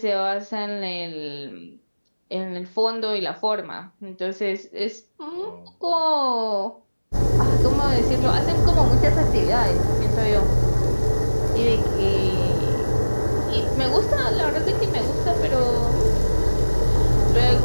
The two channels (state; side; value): inverted; both; correlation -1.00